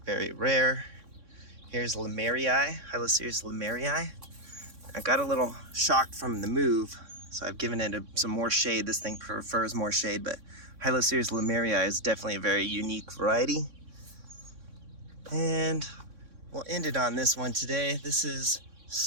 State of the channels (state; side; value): late; left; 3.6 ms